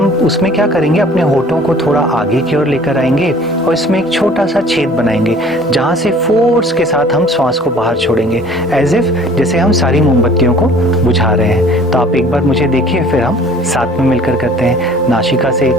उसमें क्या करेंगे, अपने होठों को थोड़ा आगे की ओर लेकर आएंगे और इसमें एक छोटा सा छेद बनाएंगे जहाँ से फोर्स के साथ हम श्वास को बाहर छोड़ेंगे, एज इफ जैसे हम सारी मोमबत्तियों को बुझा रहे हैं। तो आप एक बार मुझे देखिए, फिर हम साथ में मिलकर करते हैं। नासिका से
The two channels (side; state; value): both; normal; correlation 0.51